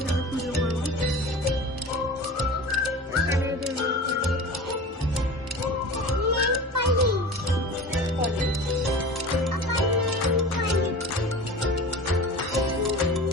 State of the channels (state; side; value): normal; both; correlation 0.35